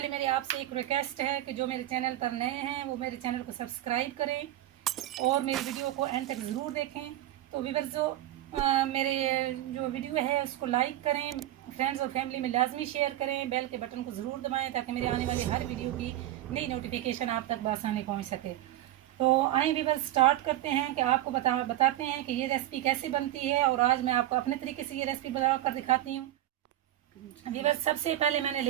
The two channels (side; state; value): left; quieter; 14.0 dB